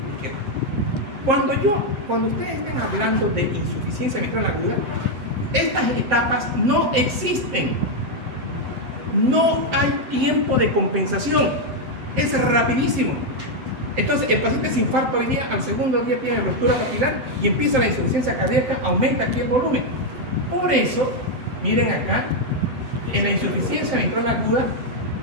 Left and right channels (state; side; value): late; left; 7.6 ms